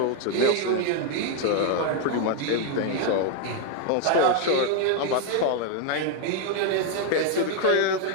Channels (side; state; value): both; different; correlation 0.01